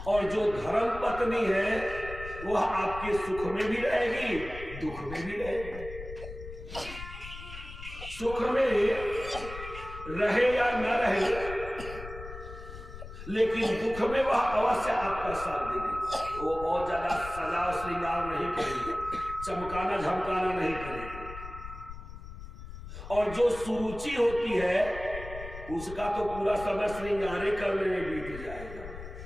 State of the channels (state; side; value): noise; left; rumble, 12 dB below the sound